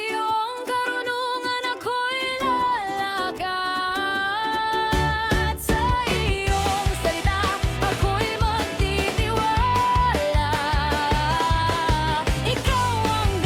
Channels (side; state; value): both; identical; correlation 1.00